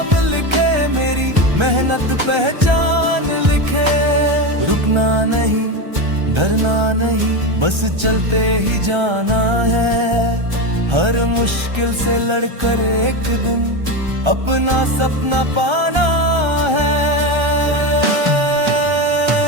लिखे मेरी मेहनत पहचान लिखे। रुकना नहीं डरना नहीं बस चलते ही जाना है। हर मुश्किल से लड़कर एक दिन अपना सपना पाना है।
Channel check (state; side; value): late; left; 1.3 ms